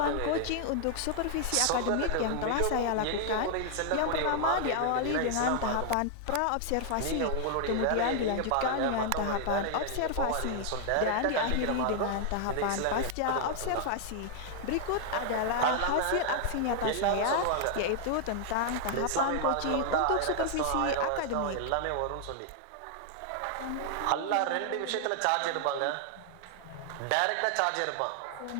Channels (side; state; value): both; different; correlation 0.00